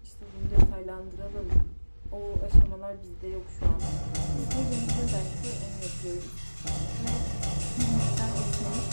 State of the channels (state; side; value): inverted; both; correlation -1.00